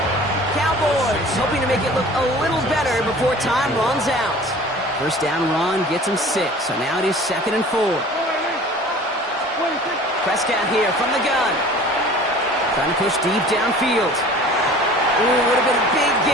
Cowboys hoping to make it look a little better before time runs out. 1st down run gets him 6, so now it is 2nd and 4. Prescott here from the gun. Trying to push deep downfield. Ooh, would have been a big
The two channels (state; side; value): normal; both; correlation 0.45